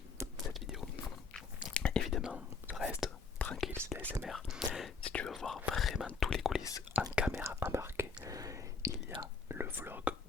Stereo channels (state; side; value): quieter; right; 5.0 dB